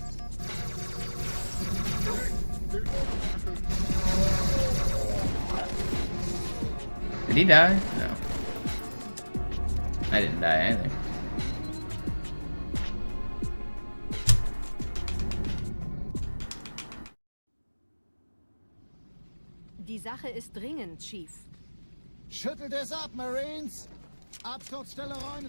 Did he die? No. I didn't die either. Die Sache ist dringend, Chief. Schüttelt es ab, Marines! Absturzstelle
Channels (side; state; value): both; inverted; correlation -1.00